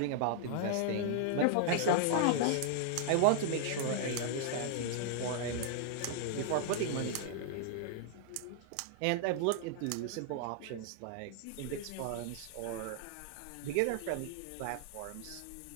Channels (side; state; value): both; different; correlation -0.01